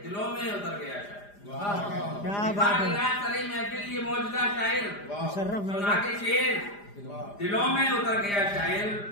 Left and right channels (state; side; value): late; right; 4.9 ms